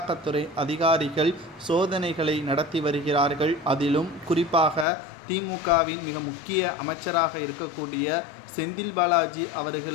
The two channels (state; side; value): drops out; right; at 4.9 s